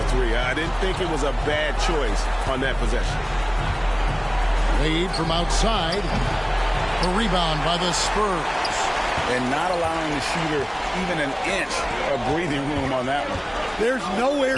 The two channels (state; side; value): identical; both; correlation 1.00